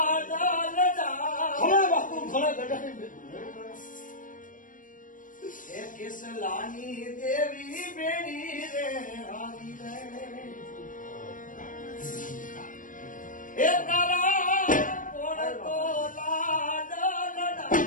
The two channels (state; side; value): late; right; 0.38 ms